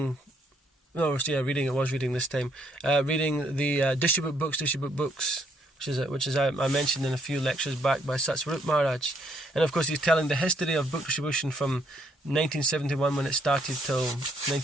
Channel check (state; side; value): normal; both; correlation 0.70